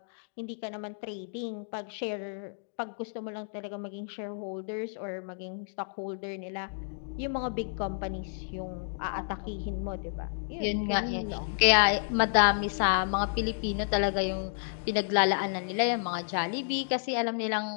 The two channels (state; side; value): silent; right; digital silence